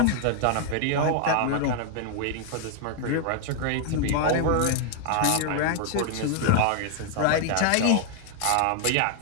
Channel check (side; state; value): both; different; correlation 0.00